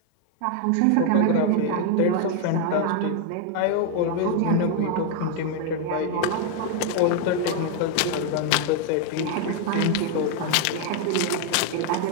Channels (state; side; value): different; both; correlation 0.00